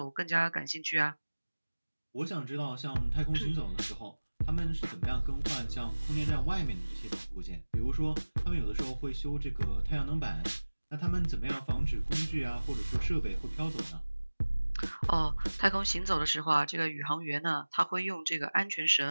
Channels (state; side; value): inverted; both; correlation -1.00